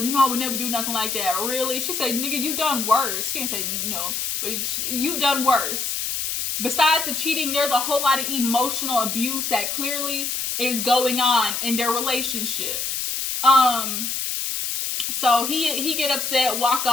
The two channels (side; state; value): left; noise; hiss, 2 dB below the sound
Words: you know, I would never do nothing like that. Really? She said, nigga, you done worse. She didn't say no, but you done worse. Besides the cheating, there's a whole lot of emotional abuse that clearly is going on in their relationship. So he get upset, walk